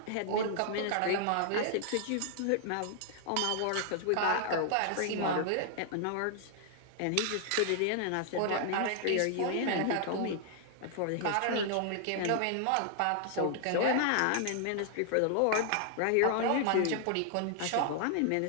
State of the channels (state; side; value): different; both; correlation 0.00